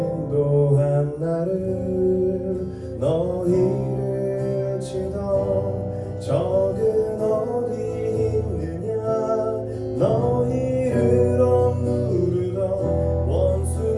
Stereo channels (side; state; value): both; identical; correlation 1.00